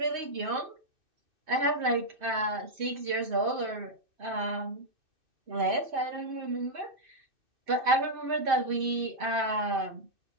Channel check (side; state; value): left; late; 2.6 ms